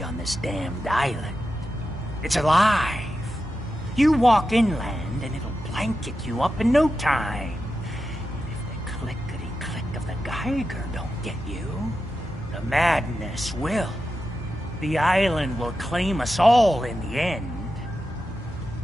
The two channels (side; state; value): both; normal; correlation 0.90